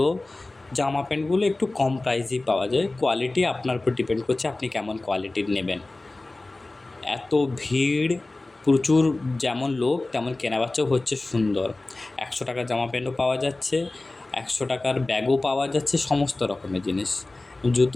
জামা প্যান্টগুলো একটু কম প্রাইসেই পাওয়া যায়। কোয়ালিটি আপনার উপর ডিপেন্ড করছে আপনি কেমন কোয়ালিটির নেবেন। এত ভিড়, প্রচুর যেমন লোক তেমন কেনাবেচাও হচ্ছে সুন্দর। 100 টাকার জামা প্যান্টও পাওয়া যাচ্ছে, 100 টাকার ব্যাগও পাওয়া যাচ্ছে, সমস্ত রকমের জিনিস।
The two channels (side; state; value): right; quieter; 3.0 dB